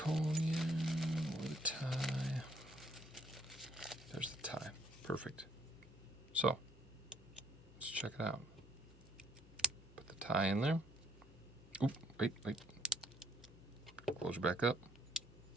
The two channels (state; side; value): normal; both; correlation 0.66